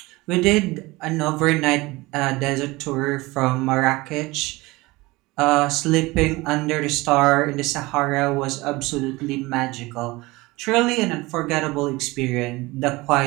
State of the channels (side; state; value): left; quieter; 21.7 dB